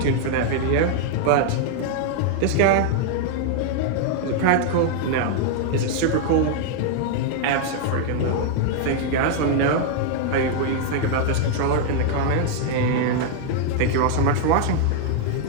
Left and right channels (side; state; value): both; different; correlation 0.00